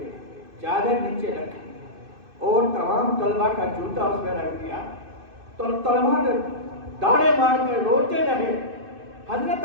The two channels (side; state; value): left; late; 2.6 ms